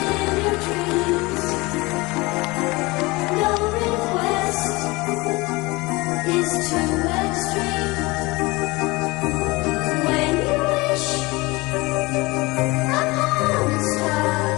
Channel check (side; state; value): right; quieter; 23.4 dB